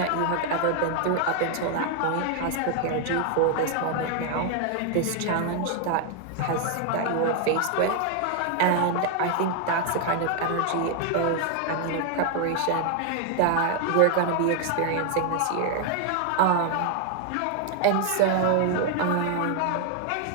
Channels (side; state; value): both; different; correlation 0.00